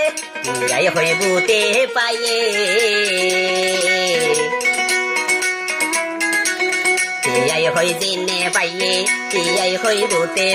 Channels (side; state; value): both; identical; correlation 1.00